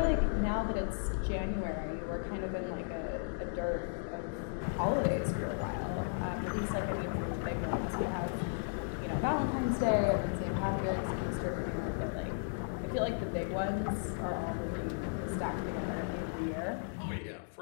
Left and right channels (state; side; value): silent; right; digital silence